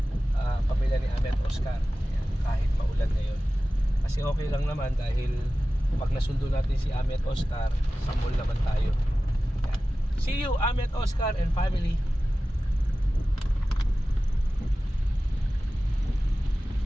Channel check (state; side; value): normal; both; correlation 0.95